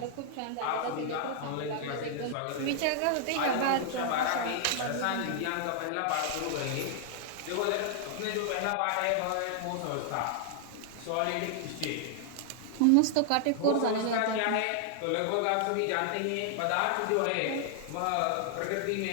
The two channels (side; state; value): both; different; correlation -0.01